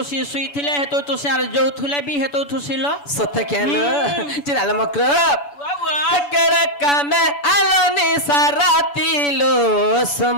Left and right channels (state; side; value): late; right; 7.0 ms